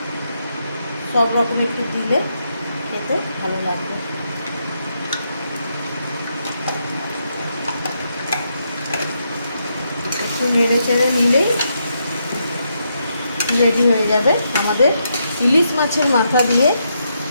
সব রকম একটু দিলে খেতে ভালো লাগবে। একটু নেড়ে চেড়ে নিলেই রেডি হয়ে যাবে আমাদের ইলিশ মাছের মাথা দিয়ে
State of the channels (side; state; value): both; inverted; correlation -0.80